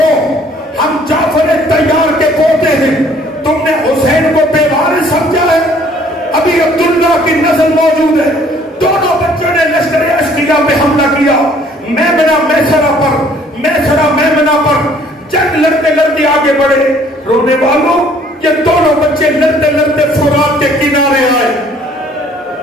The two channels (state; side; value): normal; both; correlation 0.59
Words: ہم جعفر طیار کے پوتے ہیں، تم نے حسین کو بے وارث سمجھا ہے؟ ابھی عبداللہ کی نسل موجود ہے۔ دونوں بچوں نے لشکر اشقیہ پہ حملہ کیا، میمنہ میمنہ پر جنگ لڑتے لڑتے آگے بڑھے۔ رونے والوں، یہ دونوں بچے لڑتے لڑتے فرات کے کنارے آئے۔